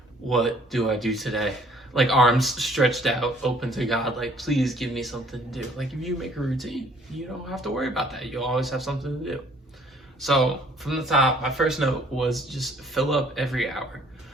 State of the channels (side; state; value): both; normal; correlation 0.58